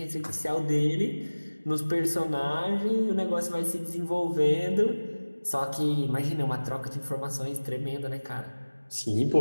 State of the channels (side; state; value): both; inverted; correlation -1.00